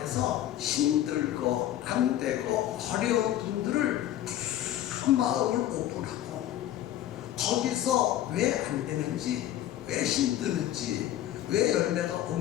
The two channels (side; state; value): right; quieter; 12.6 dB